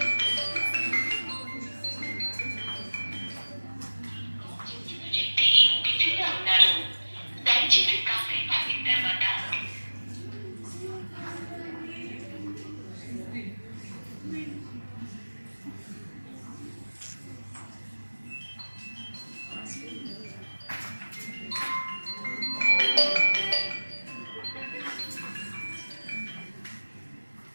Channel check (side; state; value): both; inverted; correlation -1.00